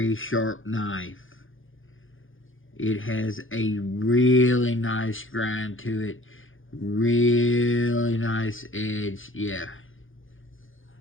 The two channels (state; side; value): late; right; 0.58 ms